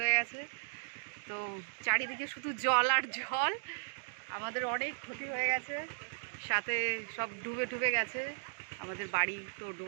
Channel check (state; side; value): silent; left; digital silence